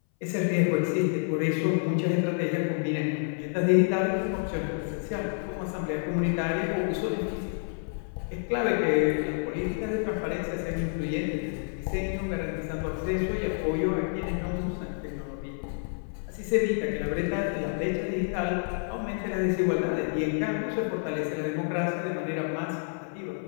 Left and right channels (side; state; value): right; silent; 59 dB below the other